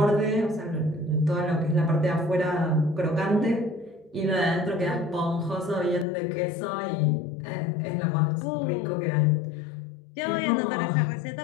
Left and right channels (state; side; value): drops out; right; at 6.1 s